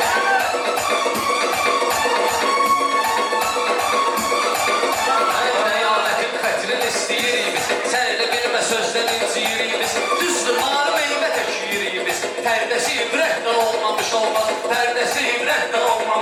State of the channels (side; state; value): both; identical; correlation 1.00